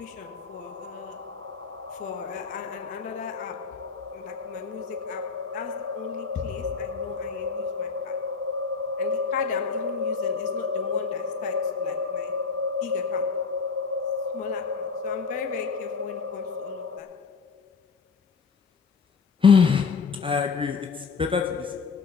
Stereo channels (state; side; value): quieter; right; 5.3 dB